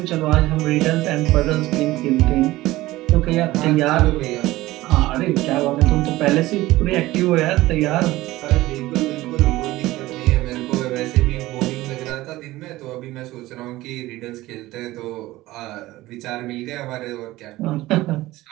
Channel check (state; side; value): quieter; left; 17.6 dB